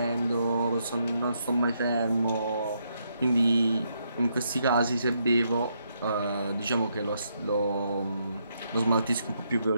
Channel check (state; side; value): inverted; both; correlation -0.77